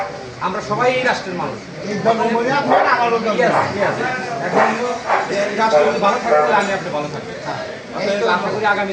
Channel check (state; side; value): identical; both; correlation 1.00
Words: আমরা সবাই এই রাষ্ট্রের মানুষ। এখন রাষ্ট্র যদি ভালো থাকতে আমি আপনি ভালো থাকবে। আশা করি আগামী